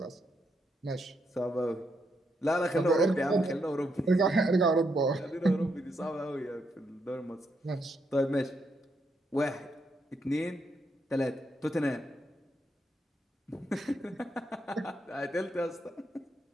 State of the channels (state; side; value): normal; both; correlation 0.79